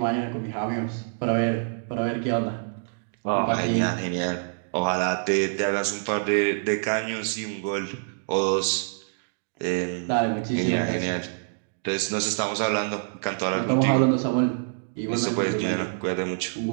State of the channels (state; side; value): silent; left; digital silence